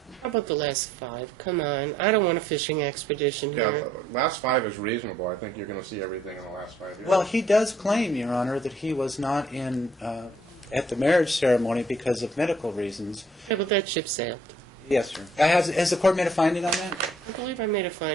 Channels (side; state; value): both; normal; correlation 0.64